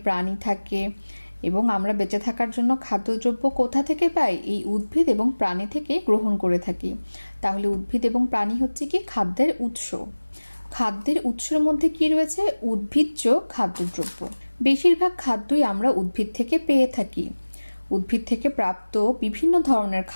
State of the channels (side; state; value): both; inverted; correlation -1.00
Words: প্রাণী থাকে, এবং আমরা বেঁচে থাকার জন্য খাদ্যদ্রব্য কোথা থেকে পাই? এই উদ্ভিদ এবং প্রাণী থেকে গ্রহণ করে থাকি। তাহলে উদ্ভিদ এবং প্রাণী হচ্ছে কি খাদ্যের উৎস। খাদ্যের উৎসের মধ্যে কি রয়েছে? উদ্ভিজ্জ খাদ্যদ্রব্য। বেশিরভাগ খাদ্যই আমরা উদ্ভিদ থেকে পেয়ে থাকি। উদ্ভিদ থেকে প্রাপ্ত বিভিন্ন ধরনের